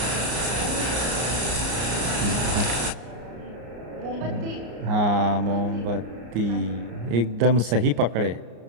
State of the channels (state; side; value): late; left; 34 ms